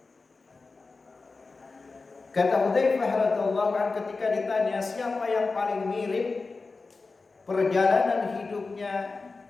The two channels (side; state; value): right; quieter; 4.0 dB